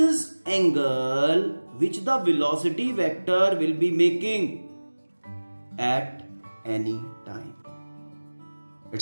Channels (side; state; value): both; inverted; correlation -1.00